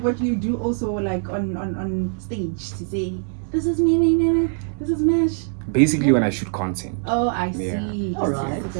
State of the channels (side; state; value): left; silent; 64 dB below the other